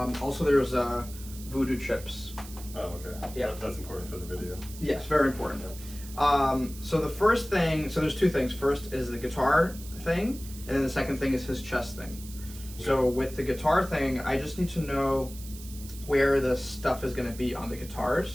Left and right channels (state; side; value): noise; right; hiss, 16 dB below the sound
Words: there's voodoo chips. Oh, okay. Yeah. That's important for the video. Yes, very important. So the first thing, so there's two things. First is the guitar thing, and then the second thing is his chest thing. So with the guitar thing, I just need to know where the stuff is going to be on the